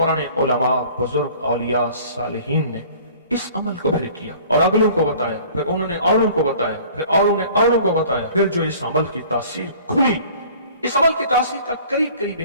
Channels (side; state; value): both; inverted; correlation -0.49